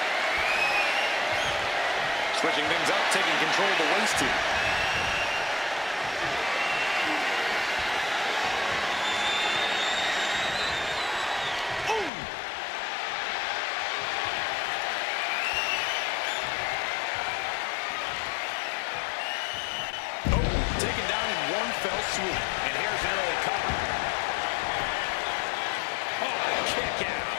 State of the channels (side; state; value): right; drops out; at 12.1 s